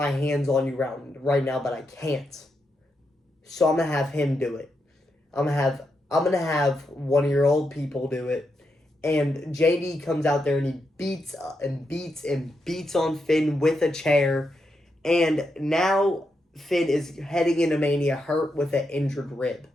hands on you right now, but I can't. So I'm going to have him do it. I'm gonna have one of your old people do it. And JD comes out there and he beats on Finn with a chair. And now Finn is heading into Mania hurt with an injured rib.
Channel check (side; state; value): both; normal; correlation 0.84